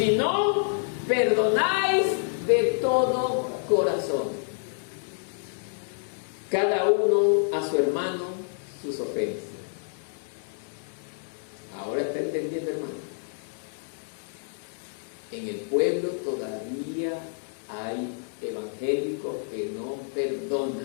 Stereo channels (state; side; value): silent; right; 59 dB below the other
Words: no perdonáis de todo corazón, cada uno a su hermano sus ofensas. Ahora está entendiendo, hermano. En el pueblo todavía hay evangélicos que no